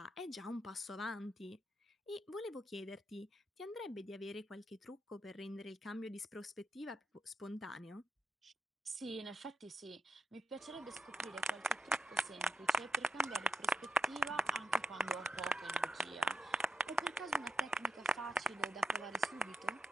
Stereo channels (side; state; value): both; normal; correlation 0.86